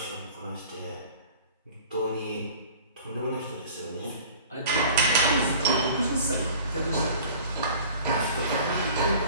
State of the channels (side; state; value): both; inverted; correlation -0.45